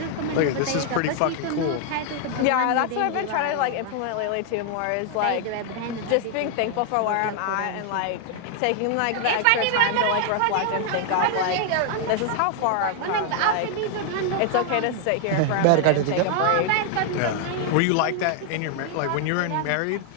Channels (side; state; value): both; different; correlation 0.00